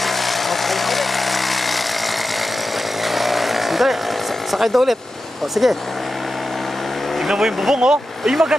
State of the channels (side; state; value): both; normal; correlation 0.91